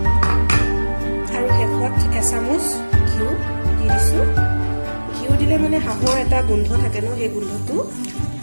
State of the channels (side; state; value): both; inverted; correlation -1.00